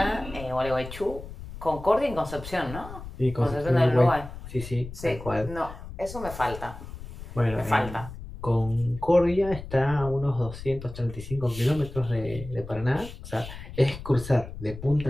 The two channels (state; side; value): noise; left; rumble, 12 dB below the sound